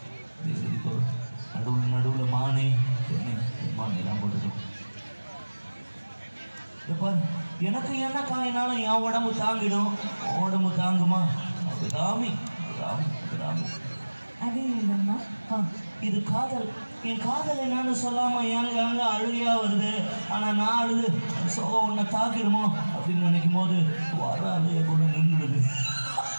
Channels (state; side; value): inverted; both; correlation -1.00